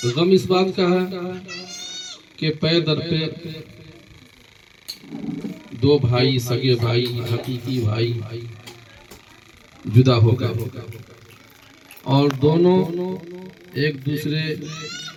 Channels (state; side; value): identical; both; correlation 1.00